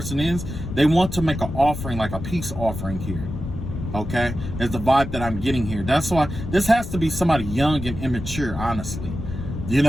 is, they want to make an offering, like a peace offering here. Okay, is the vibe that I'm getting here. That's why this has to be somebody young and immature, honestly. You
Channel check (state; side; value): noise; left; rumble, 7 dB below the sound